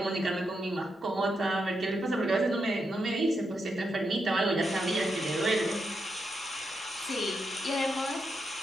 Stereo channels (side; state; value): both; normal; correlation 0.83